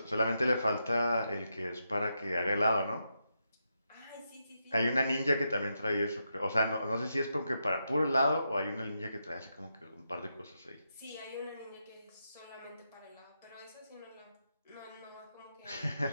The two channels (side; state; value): both; inverted; correlation -0.84